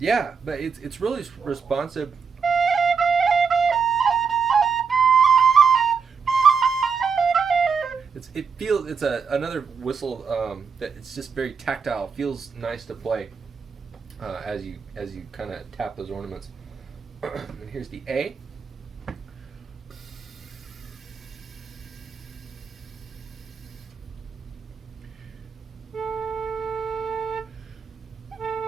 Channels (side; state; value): left; quieter; 5.8 dB